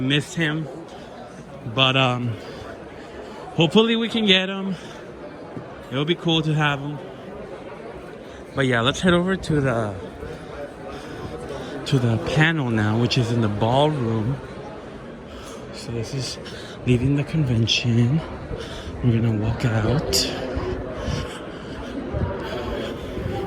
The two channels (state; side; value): identical; both; correlation 1.00